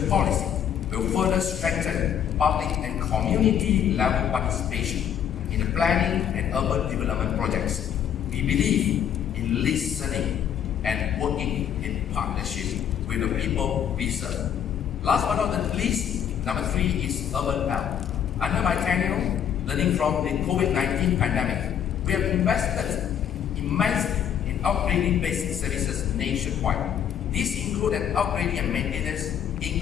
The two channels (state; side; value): quieter; right; 9.1 dB